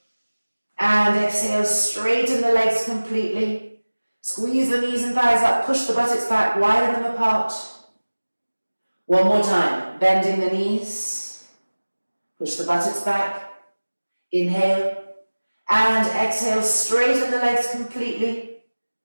and exhale, straighten the legs completely. Squeeze the knees and thighs up, push the buttocks back, widen them apart. One more time, bending the knees. Push the buttocks back. Inhale and exhale, straighten the legs completely.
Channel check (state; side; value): inverted; both; correlation -1.00